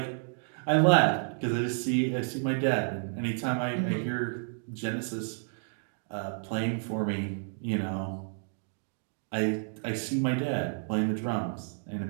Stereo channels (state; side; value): silent; left; digital silence